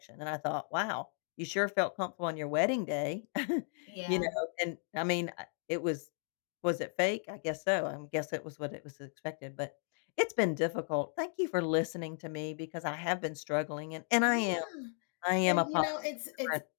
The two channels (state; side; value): silent; right; 54 dB below the other